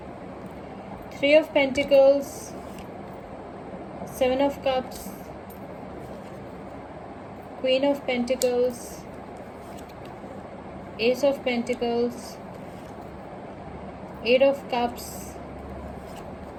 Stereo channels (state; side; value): identical; both; correlation 1.00